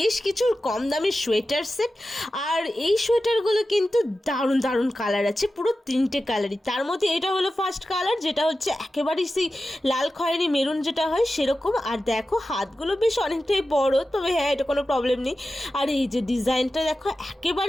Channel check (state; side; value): normal; both; correlation 0.93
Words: কিছু কম দামের সোয়েটার সেট। আর এই সোয়েটারগুলো কিন্তু দারুণ দারুণ কালার আছে, পুরো 3টে কালারই। তার মধ্যে এটা হলো ফার্স্ট কালার, যেটা হচ্ছে একেবারেই সেই লাল খয়েরি মেরুন যেটা হয় সেরকম। আর দেখো হাতগুলো বেশ অনেকটাই বড়, তবে হ্যাঁ এটা কোনো প্রবলেম নেই। আর এই যে ডিজাইনটা দেখো